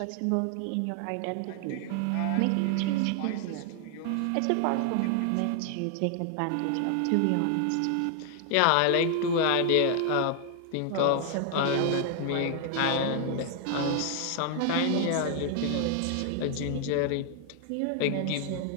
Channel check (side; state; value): both; different; correlation 0.00